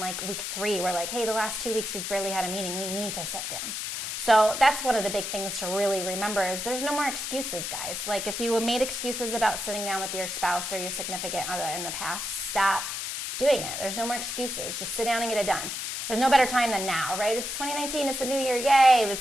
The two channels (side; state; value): left; noise; hiss, 4 dB below the sound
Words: week 3, we're like, hey, the last 2 weeks we've barely had a meeting. We need to sit down. So that's one of the big things to really remember is there's no more excuses, guys. Like if you made excuses about sitting down with your spouse or your significant other in the past, stop doing it. There's no more excuses. Just sit down and get it done. There's no better time than now, right? It's 2019. It's the new year. Yay.